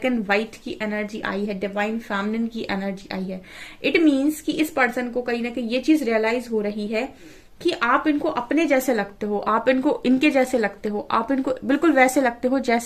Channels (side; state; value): both; identical; correlation 1.00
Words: एंड व्हाइट की एनर्जी आई है, डिवाइन फेमिनिन की एनर्जी आई है। इट मीन्स कि इस पर्सन को कहीं ना कहीं ये चीज रियलाइज हो रही है कि आप इनको अपने जैसे लगते हो, आप इनको इनके जैसे लगते हो, आप इनको बिल्कुल वैसे लगते हो